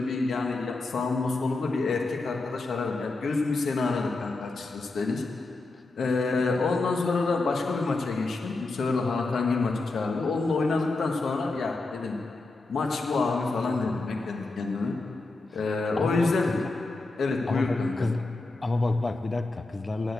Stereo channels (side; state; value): right; quieter; 3.3 dB